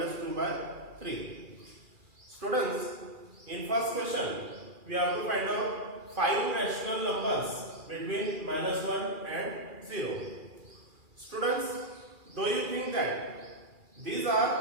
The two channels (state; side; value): late; left; 2.4 ms